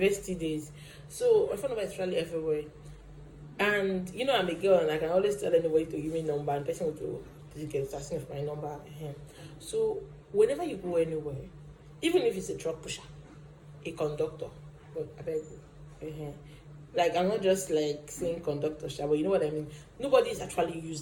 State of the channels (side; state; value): both; identical; correlation 1.00